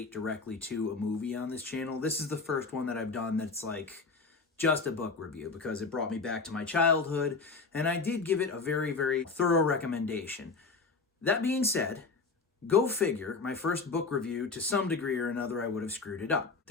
directly to a movie on this channel. This is the first one that I've done that's, like, just a book review because it brought me back to my childhood, and I did give it a very, very thorough recommendation. That being said, go figure, my first book review, to some degree or another, I would have screwed it up.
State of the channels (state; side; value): quieter; right; 4.3 dB